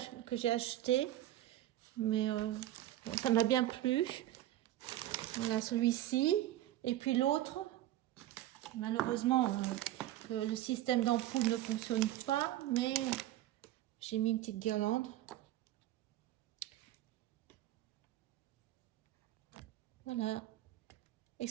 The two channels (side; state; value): left; quieter; 14.1 dB